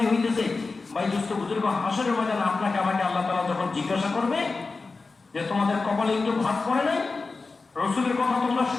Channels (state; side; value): quieter; right; 4.0 dB